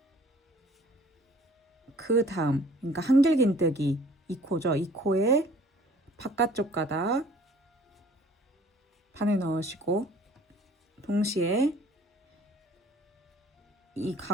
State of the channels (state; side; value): normal; both; correlation 0.53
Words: 그 다음, 그러니까 한길긴뜨기 이 코죠. 이 코에 바깥쪽 가닥 반을 넣으시고 동시에 이